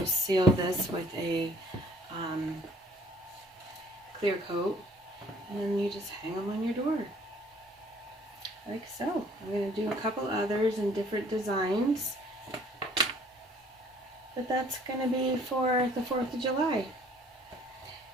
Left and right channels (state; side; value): normal; both; correlation 0.56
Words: seal this with a clear coat, and then you just hang them on your door. Like so. I'm going to do a couple others in different designs, but that's going to be for the 4th of July.